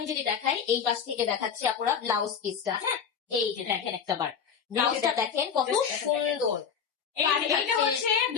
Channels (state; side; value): quieter; right; 7.0 dB